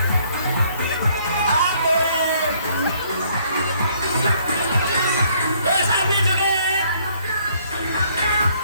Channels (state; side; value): inverted; both; correlation -0.64